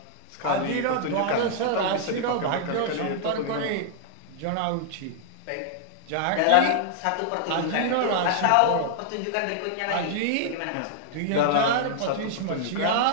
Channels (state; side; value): different; both; correlation -0.01